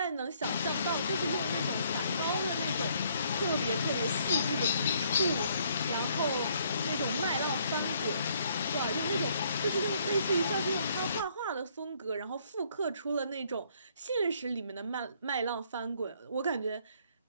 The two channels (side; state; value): both; inverted; correlation -0.66